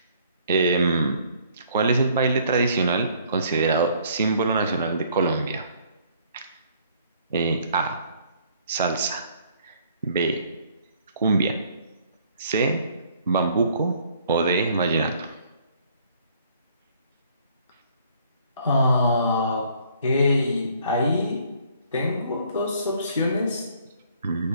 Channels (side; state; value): both; inverted; correlation -0.61